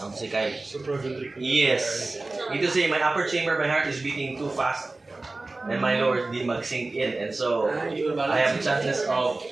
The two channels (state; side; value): quieter; left; 3.2 dB